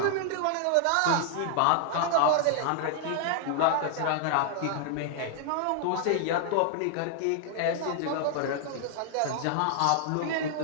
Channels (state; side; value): different; both; correlation 0.00